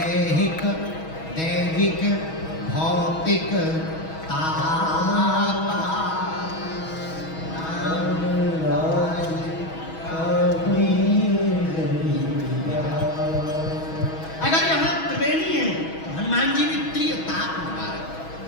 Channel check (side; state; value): right; late; 6.2 ms